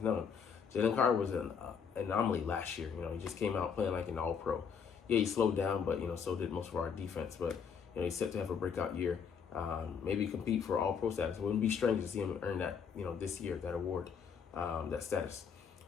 known. Jalen Carter was an anomaly last year. He just came out playing like an all-pro. Yeah, he slowed down, but so did most of our defense. But he's set to have a breakout year. Maybe compete for all-pro status. It wouldn't be strange to see him earn that this year, that award, that status.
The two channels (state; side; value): quieter; right; 6.7 dB